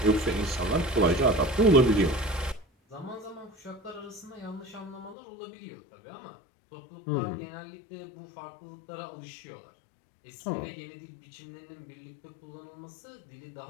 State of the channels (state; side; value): drops out; right; at 5.2 s